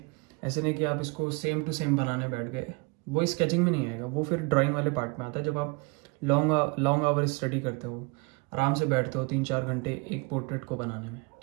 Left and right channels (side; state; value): left; quieter; 29.4 dB